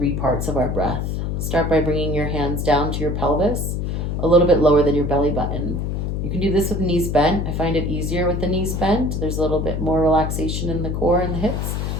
parts of our breath. Start by bringing your hands down to your pelvis, a little bit lower than your belly button. You can do this with knees bent. I find it easier with the knees bent. There's a little bit more relaxation in the core and the hips.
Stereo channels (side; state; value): left; noise; hum, 1 dB below the sound